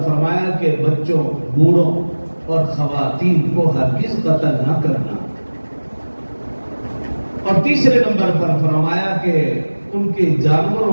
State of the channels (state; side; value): inverted; both; correlation -1.00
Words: فرمایا کہ بچوں، بوڑھوں اور خواتین کو ہرگز قتل نہ کرنا۔ اور تیسرے نمبر پر فرمایا کہ ان کے